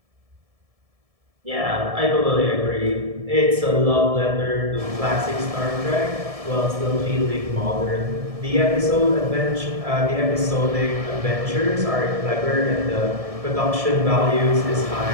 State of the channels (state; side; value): late; left; 1.7 ms